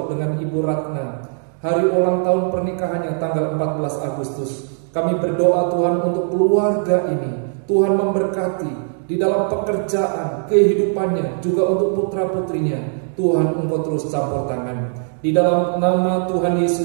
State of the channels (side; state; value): left; silent; 58 dB below the other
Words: dengan Ibu Ratna. Hari ulang tahun pernikahannya tanggal 14 Agustus. Kami berdoa Tuhan untuk keluarga ini. Tuhan memberkati di dalam pekerjaan, kehidupannya, juga untuk putra-putrinya. Tuhan, Engkau terus campur tangan. Di dalam nama Tuhan